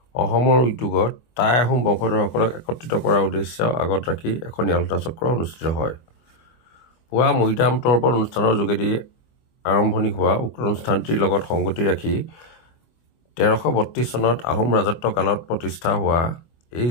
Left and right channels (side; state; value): right; late; 24 ms